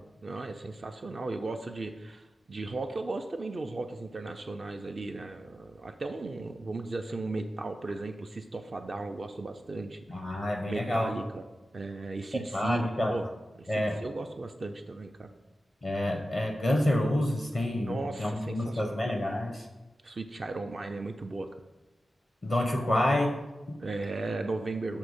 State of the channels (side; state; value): both; normal; correlation 0.92